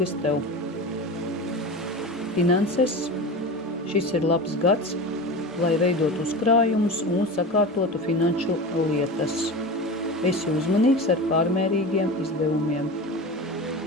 tev. Finanses. Šis ir labs gads, lai veidot uzkrājumus un sakārtotu finanšu lietas. Esi uzmanīgs ar pārmērīgiem izdevumiem.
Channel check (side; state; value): both; normal; correlation 0.29